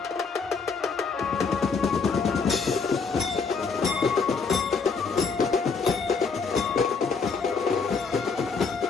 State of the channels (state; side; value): quieter; right; 5.0 dB